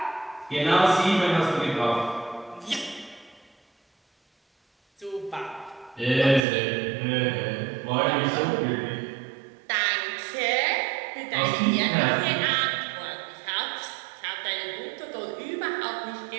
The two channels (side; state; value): left; drops out; at 6.4 s